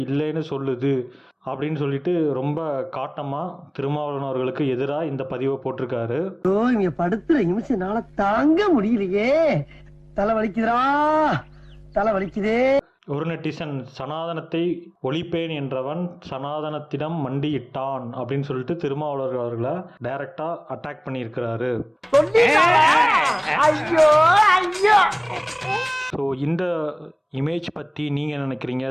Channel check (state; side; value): identical; both; correlation 1.00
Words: இல்லைன்னு சொல்லுது அப்படின்னு சொல்லிட்டு ரொம்ப காட்டமாக திருமாவளவன் அவர்களுக்கு எதிராக இந்த பதிவை போட்டிருக்காரு. இங்க படுத்துற நிமிஷம்னால தாங்க முடியலையே, தலை வலிக்குதுரா, தலை வலிக்குதே. ஒரு நெட்டிசன் சனாதனத்தை ஒழிப்பேன் என்றவன் சனாதனத்திடம் மண்டியிட்டான் அப்படின்னு சொல்லிட்டு திருமாவளவன் அவர்களை டைரக்டா அட்டாக் பண்ணியிருக்கிறாரு. ஸோ இந்த இமேஜ் பற்றி நீங்கள் நினைக்கிறீங்க?